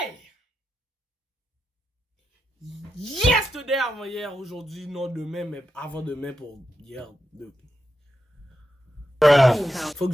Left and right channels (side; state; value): both; normal; correlation 0.87